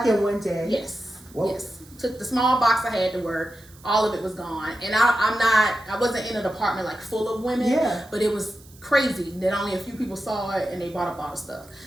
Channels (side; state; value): right; noise; hiss, 24 dB below the sound